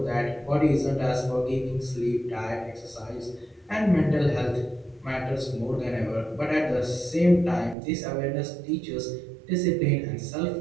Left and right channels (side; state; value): left; drops out; at 7.8 s